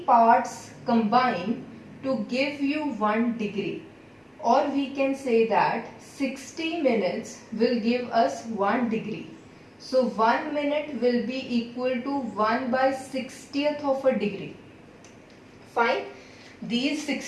parts combine to give you 1 degree. Or we can say that 60 minutes will give us 1 degree. So 1 minute will be equal to 1 by 60th of a degree. Fine. These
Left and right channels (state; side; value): identical; both; correlation 1.00